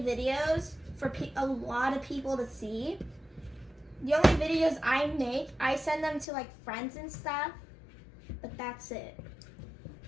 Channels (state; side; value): drops out; right; at 6.2 s